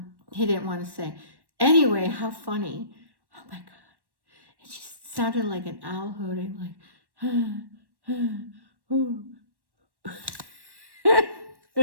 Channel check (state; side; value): late; left; 1.1 ms